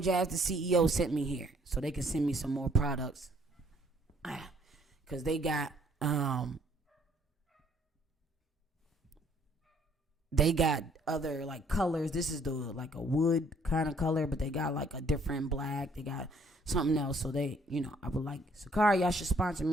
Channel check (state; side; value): normal; both; correlation 0.63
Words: Jazz, the CEO sent me here, so they can send me some more products. Cause they got other like colors. This is like a wood kind of color, but they got like a different black. They got something else. So they, I would like Sakari. Y'all should sponsor